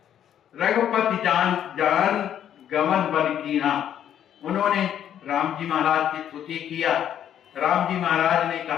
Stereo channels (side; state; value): right; quieter; 10.0 dB